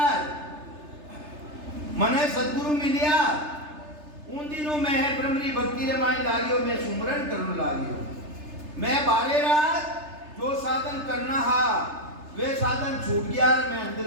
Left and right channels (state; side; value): late; left; 3.3 ms